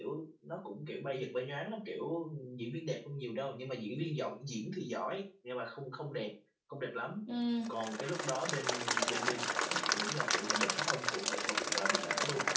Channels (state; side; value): identical; both; correlation 1.00